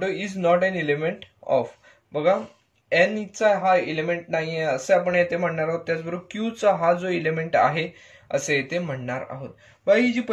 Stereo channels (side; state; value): both; identical; correlation 1.00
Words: is not an element of. बघा एन चा हा एलिमेंट नाहीये असे आपण येथे म्हणणार आहोत. त्याचबरोबर क्यू चा हा जो एलिमेंट आहे असे येथे म्हणणार आहोत. बघा ही जी